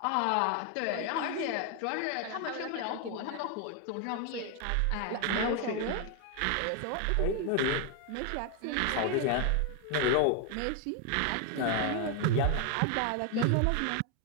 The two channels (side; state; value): both; different; correlation 0.01